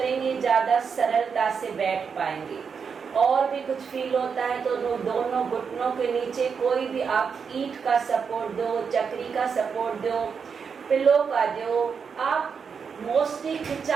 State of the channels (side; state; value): left; quieter; 6.1 dB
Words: ज़्यादा सरलता से बैठ पाएंगे। और भी कुछ फील होता है तो दोनों घुटनों के नीचे कोई भी आप ईंट का सपोर्ट दो, चक्री का सपोर्ट दो, पिलो का दो। आप मोस्टली